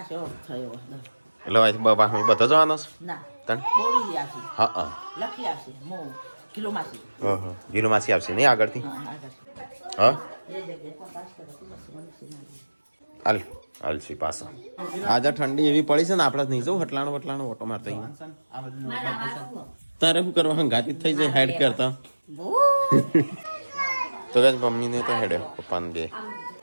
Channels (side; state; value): both; inverted; correlation -1.00